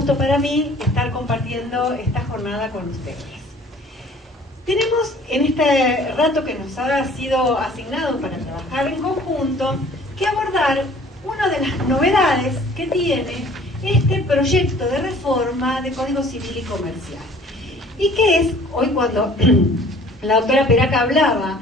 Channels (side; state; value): both; normal; correlation 0.52